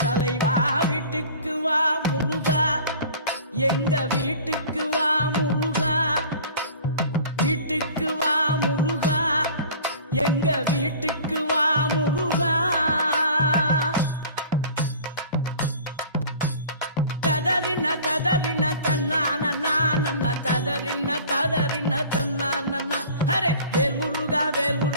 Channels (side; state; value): both; inverted; correlation -0.44